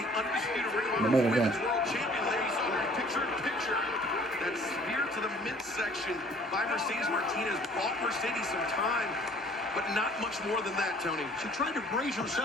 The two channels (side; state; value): both; normal; correlation 0.54